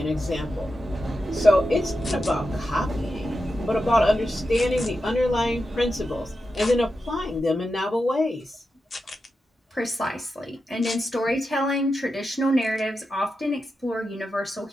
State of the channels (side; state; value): both; normal; correlation 0.89